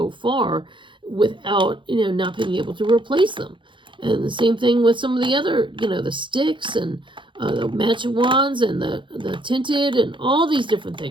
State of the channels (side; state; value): left; late; 0.24 ms